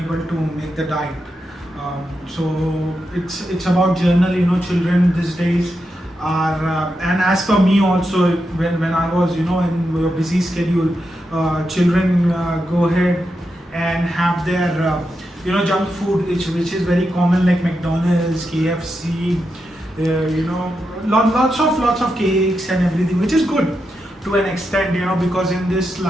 to make the diet. So it's about journal, children these days are, and as for me also, when I was, in a busy schedule, children go ahead and have their, junk food, which is very common, like McDonald's, KFC, lots of cakes and everything, which is good to an extent, because in this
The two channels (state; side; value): normal; both; correlation 0.86